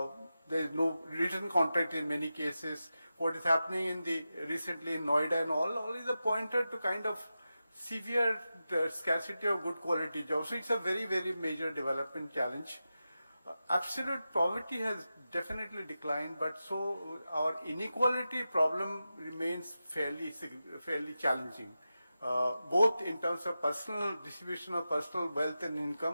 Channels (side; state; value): both; inverted; correlation -0.92